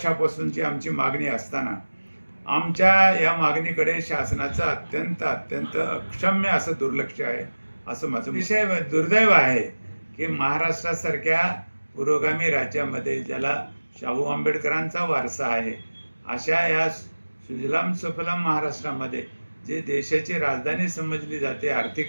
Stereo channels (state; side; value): inverted; both; correlation -1.00